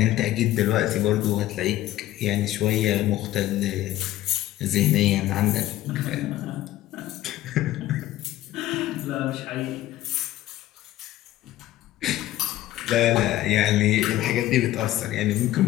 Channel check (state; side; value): quieter; right; 14.7 dB